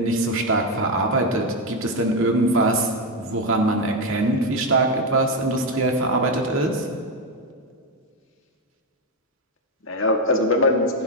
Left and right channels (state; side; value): normal; both; correlation 0.08